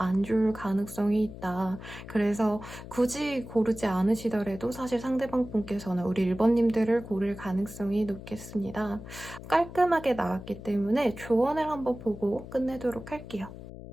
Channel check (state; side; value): noise; left; hum, 13 dB below the sound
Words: 좋을 가능성이 있다. 그래서 굳이 고르지 않으시더라도 사실 상대방 분께서는 우리 1번님들을 고를 가능성이 높겠습니다. 깔끔하게 나왔기 때문에 조언을 한번 보고 끝내도록 할게요.